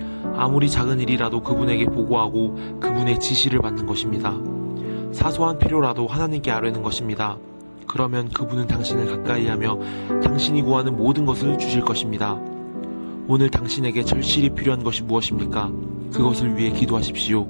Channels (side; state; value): both; inverted; correlation -1.00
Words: 아무리 작은 일이라도 그분에게 보고하고 그분의 지시를 받는 것입니다. 사소한 필요라도 하나님께 아뢰는 것입니다. 그러면 그분은 당신을 가까이하며 당신이 구하는 모든 것을 주실 것입니다. 오늘 당신에게 절실히 필요한 것이 무엇입니까? 그것을 위해 기도하십시오.